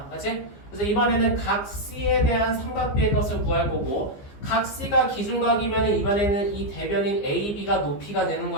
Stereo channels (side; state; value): right; late; 15 ms